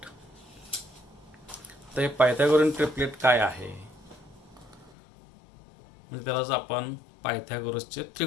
तर हे पायथागोरियन ट्रिपलेट काय आहे, म्हणजे त्यालाच आपण पायथागोरसचे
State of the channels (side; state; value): right; drops out; at 4.9 s